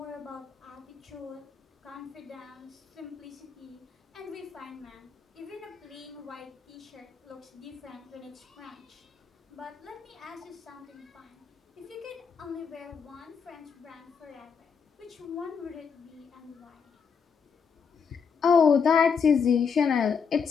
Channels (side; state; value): right; quieter; 6.1 dB